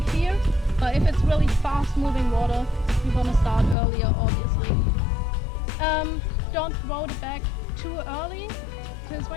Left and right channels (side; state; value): right; drops out; at 3.8 s